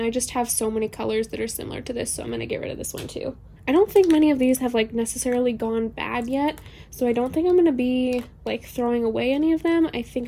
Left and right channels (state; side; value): identical; both; correlation 1.00